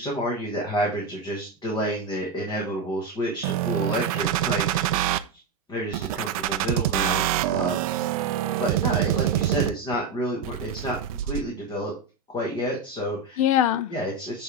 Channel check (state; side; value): quieter; left; 3.3 dB